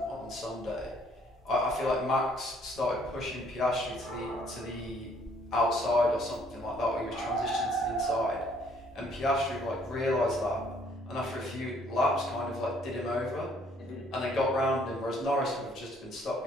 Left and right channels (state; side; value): normal; both; correlation 0.63